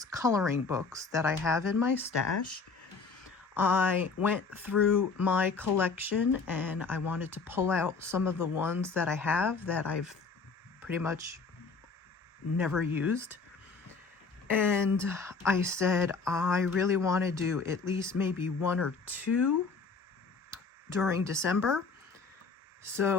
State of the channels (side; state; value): right; quieter; 4.6 dB